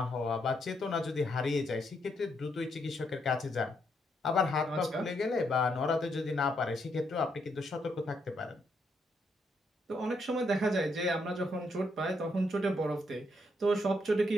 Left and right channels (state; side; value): normal; both; correlation 0.76